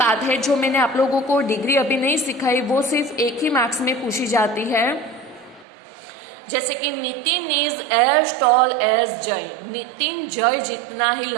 है, जो मैंने आप लोगों को डिग्री अभी नहीं सिखाई, वो सिर्फ एक ही मार्क्स में पूछी जाती है। जैसे कि Nitin is as tall as Jay, Nitin Jay जितना ही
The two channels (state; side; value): drops out; left; at 5.7 s